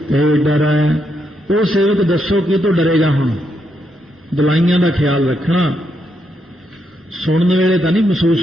ਤੇ ਡਰੈ। ਉਹ ਸੇਵਕ ਦੱਸੋ ਕੀ ਤੋਂ ਡਰੇਗਾ? ਹੁਣ ਦਲਾਈਆਂ ਦਾ ਖਿਆਲ ਰੱਖਣਾ, ਸੁਣਨ ਵੇਲੇ ਤਾਂ ਨਹੀਂ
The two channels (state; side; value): normal; both; correlation 0.80